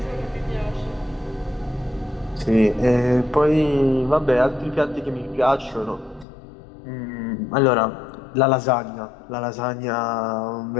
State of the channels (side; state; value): right; drops out; at 6.2 s